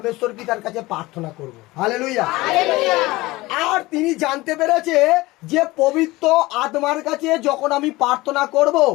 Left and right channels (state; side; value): quieter; right; 20.1 dB